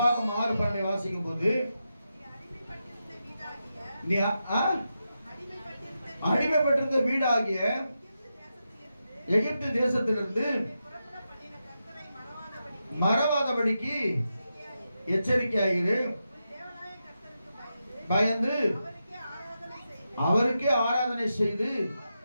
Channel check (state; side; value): inverted; both; correlation -0.88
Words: 6:12 வாசிக்கும் போது, நீ அடிமைப்பட்டிருந்த வீடாகிய எகிப்து தேசத்திலிருந்து மறவாதபடிக்கு எச்சரிக்கையாயிரு. பயந்து அவருக்கே ஆராதனை செய்து.